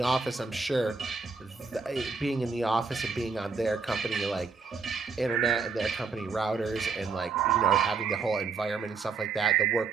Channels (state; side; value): quieter; left; 4.8 dB